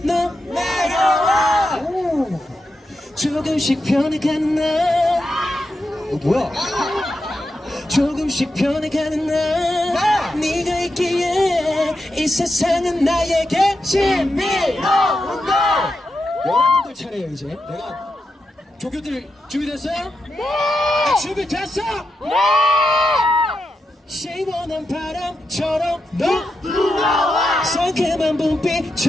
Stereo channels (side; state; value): both; normal; correlation 0.86